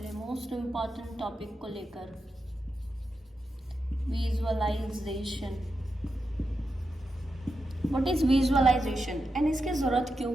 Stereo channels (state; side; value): normal; both; correlation 0.88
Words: लिए मोस्ट इम्पॉर्टेंट टॉपिक को लेकर, visualization. What is visualization and इसकी ज़रूरत क्यों